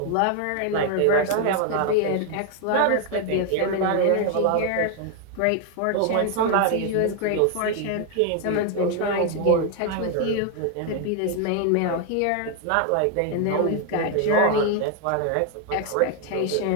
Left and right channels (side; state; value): both; different; correlation 0.00